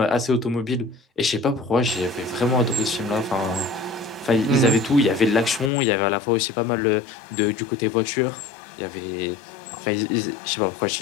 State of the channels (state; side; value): drops out; right; at 5.7 s